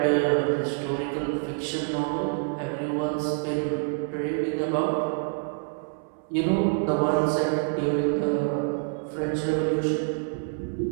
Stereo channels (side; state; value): left; silent; 60 dB below the other